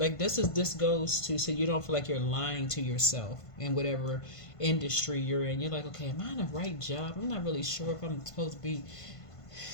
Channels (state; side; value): late; right; 1.5 ms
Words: this goes to so you don't feel like you're lying to yourself in whatever industry you're in. You're like, okay, am I in the right job? I'm not really sure if I'm supposed to be.